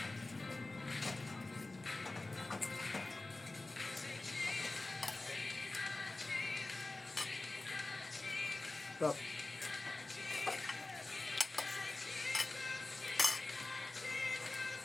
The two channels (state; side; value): quieter; right; 3.0 dB